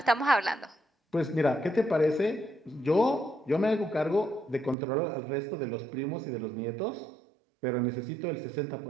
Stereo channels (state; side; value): drops out; left; at 4.8 s